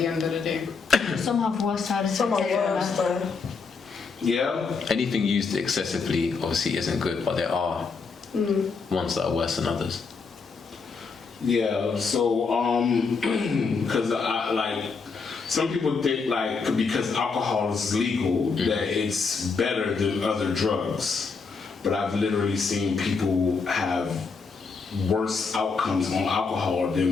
end of the day. Some have worse side effects. Some are than worse others. though. Yeah. Anything used excessively obviously isn't good, but there are ones that are worse than others. Yeah, so because I like some people think like because alcohol is legal that it's better than other drugs, but I've literally seen people have worse outcomes on alcohol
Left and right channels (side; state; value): right; quieter; 4.9 dB